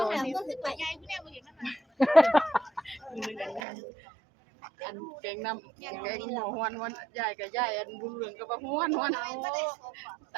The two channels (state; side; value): drops out; left; at 3.6 s